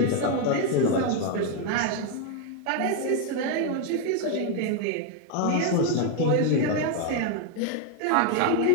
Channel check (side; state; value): both; different; correlation 0.01